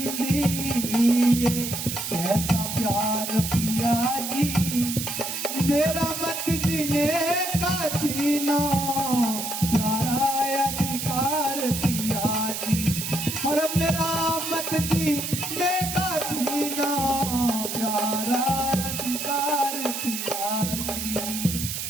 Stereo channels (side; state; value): right; noise; hiss, 4 dB below the sound